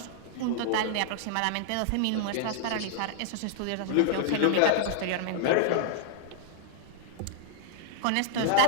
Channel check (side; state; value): both; different; correlation -0.01